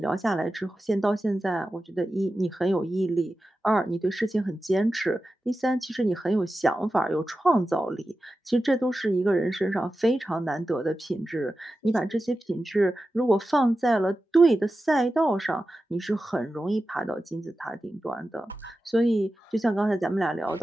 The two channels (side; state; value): both; normal; correlation 0.93